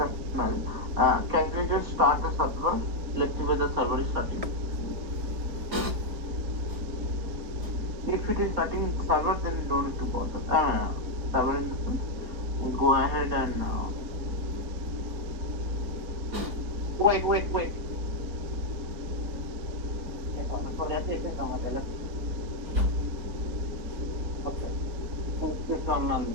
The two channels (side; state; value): left; late; 4.4 ms